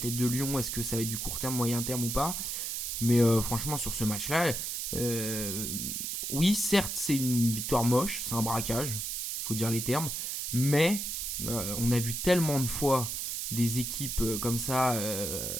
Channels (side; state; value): right; noise; hiss, 3 dB below the sound